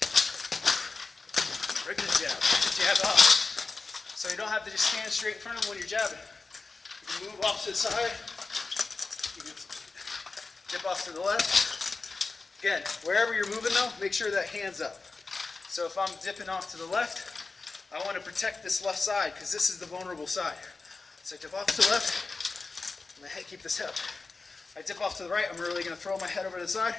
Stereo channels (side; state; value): right; quieter; 3.9 dB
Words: Regular jab, jab off. So you don't have to just stand straight in front of them when you're jabbing. You can move off to the side. You can dip off to the left. Again, wherever you're moving though, make sure that hand's up. So if I'm dipping off to the left, I want to protect this left side because this is the vulnerable side. So I dip off to the left, I'm going to keep this hip. I dip off to the right, I'm really going to throw my head over to the side,